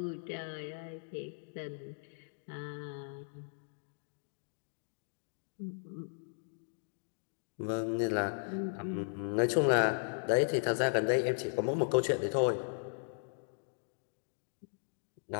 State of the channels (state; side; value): silent; right; digital silence